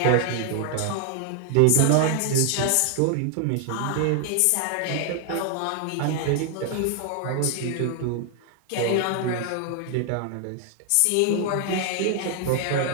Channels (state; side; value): different; both; correlation 0.00